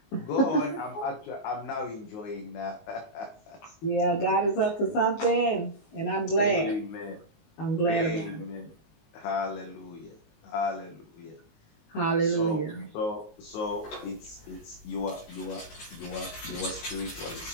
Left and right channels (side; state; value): right; late; 19 ms